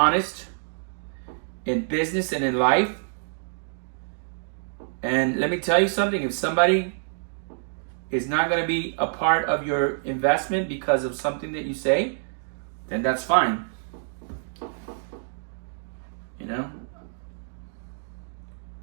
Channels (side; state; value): left; silent; digital silence